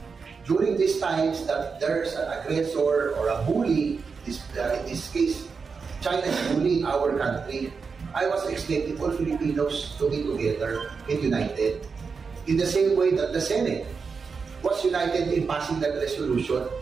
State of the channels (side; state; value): left; quieter; 5.2 dB